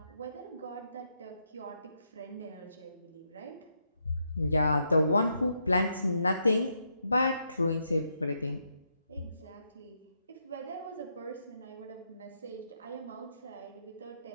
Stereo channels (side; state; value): both; inverted; correlation -0.80